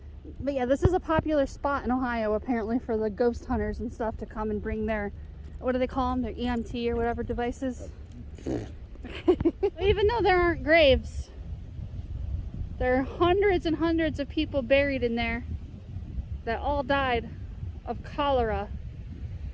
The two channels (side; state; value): both; identical; correlation 1.00